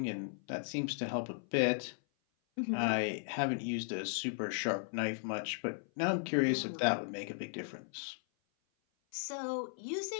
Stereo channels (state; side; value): silent; right; 54 dB below the other